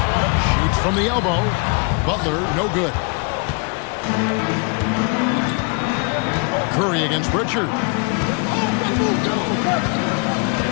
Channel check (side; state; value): right; quieter; 34.2 dB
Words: Shoots from the elbow. Butler, no good. Curry against Pritchard.